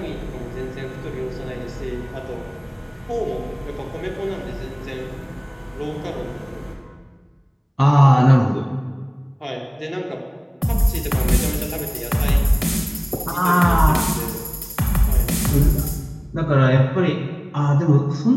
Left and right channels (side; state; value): both; identical; correlation 1.00